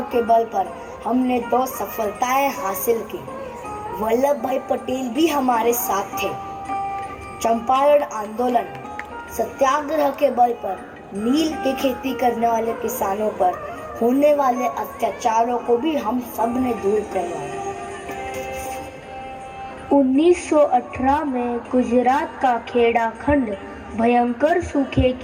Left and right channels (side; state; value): both; identical; correlation 1.00